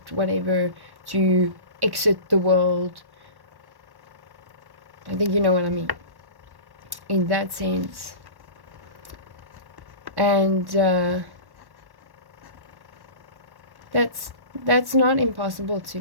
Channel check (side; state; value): left; late; 1.1 ms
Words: whatever, to exit the world. I think you know what I mean in that sense. And that's not impossible to